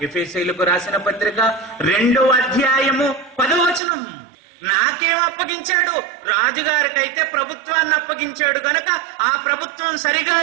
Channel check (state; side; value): drops out; left; at 3.8 s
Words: ఎఫెసీయులకు రాసిన పత్రిక 2వ అధ్యాయము 10వ వచనం. నాకేం అప్పగించాడు? రాజుగారికైతే ప్రభుత్వాన్ని అప్పగించాడు గనక ఆ ప్రభుత్వం సరిగా